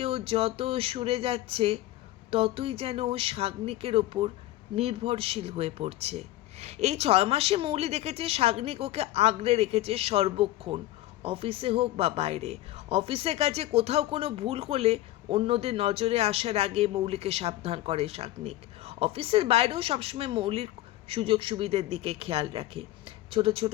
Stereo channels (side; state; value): right; quieter; 15.6 dB